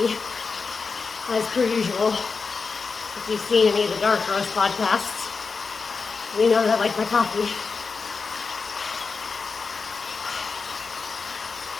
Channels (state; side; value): quieter; right; 4.8 dB